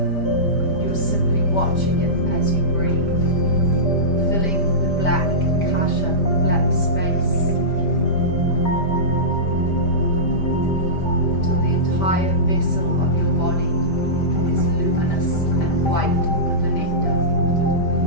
You're simply watching it as you breathe, filling the black kasha, the black space, entire vessel of your body is luminous and white with the nectar.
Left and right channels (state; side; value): late; right; 5.1 ms